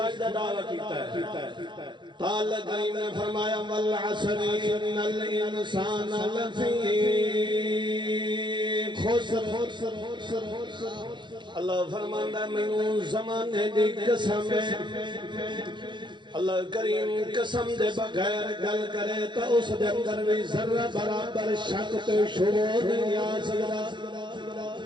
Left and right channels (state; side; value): late; left; 0.23 ms